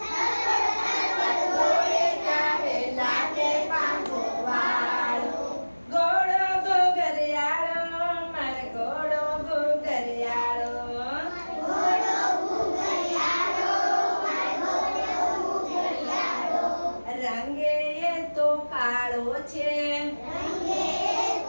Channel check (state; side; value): inverted; both; correlation -1.00